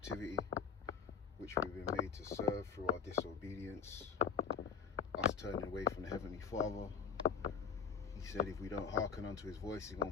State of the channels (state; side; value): quieter; right; 6.8 dB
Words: which we've been made to serve through our disobedience, us turning away from the Heavenly Father. He said if we don't hearken unto his voice, he's going